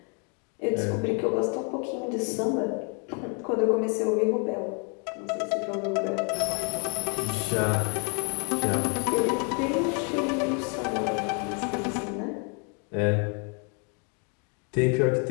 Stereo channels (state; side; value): quieter; right; 37.4 dB